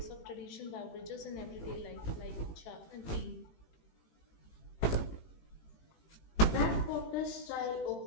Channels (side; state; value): right; late; 18 ms